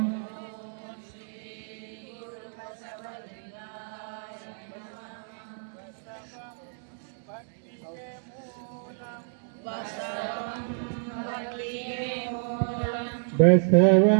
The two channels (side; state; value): left; silent; digital silence